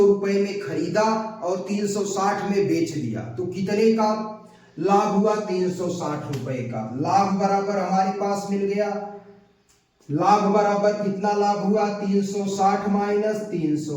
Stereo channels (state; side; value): identical; both; correlation 1.00